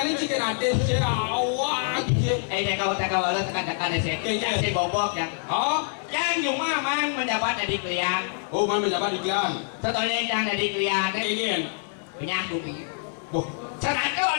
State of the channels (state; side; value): silent; right; 61 dB below the other